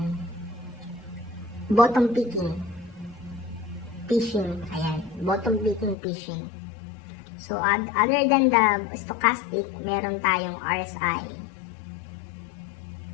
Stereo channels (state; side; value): drops out; right; at 6.0 s